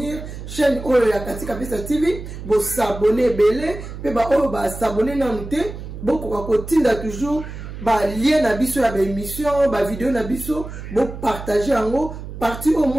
chaîne oyo ya Katika Pesa TV bo s'abonner belé pe ba oyo ba s'abonner na nute boko ko tinda toujours ba lien na biso ya ba émission ba vidéo na biso bo partager yango partie au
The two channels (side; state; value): right; noise; hum, 10 dB below the sound